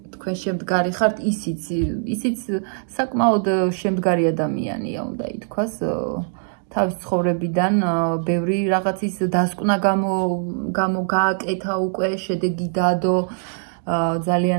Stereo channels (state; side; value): silent; left; 64 dB below the other